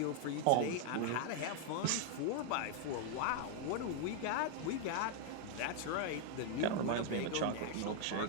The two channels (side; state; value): both; different; correlation 0.00